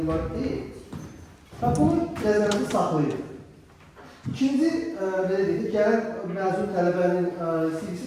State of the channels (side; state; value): both; identical; correlation 1.00